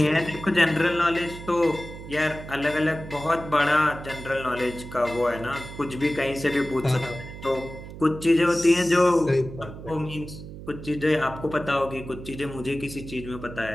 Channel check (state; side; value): noise; right; hum, 13 dB below the sound